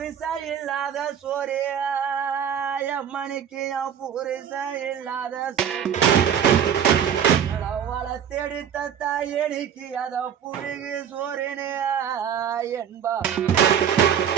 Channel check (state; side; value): quieter; left; 8.6 dB